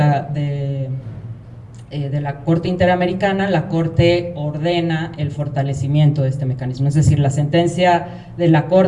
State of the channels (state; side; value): identical; both; correlation 1.00